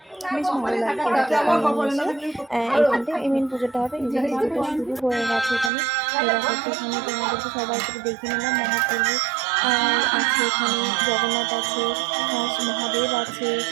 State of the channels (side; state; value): left; drops out; at 5.7 s